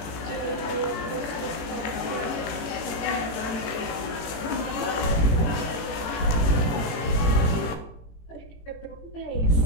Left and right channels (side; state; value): right; late; 18 ms